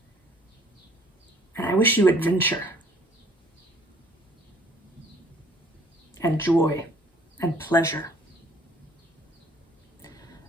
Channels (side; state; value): both; normal; correlation 0.58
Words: And I wish you adventure and joy and pleasure.